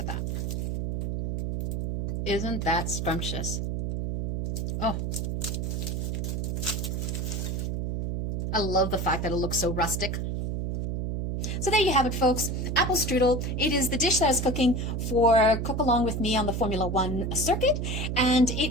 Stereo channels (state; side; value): noise; right; hum, 2 dB below the sound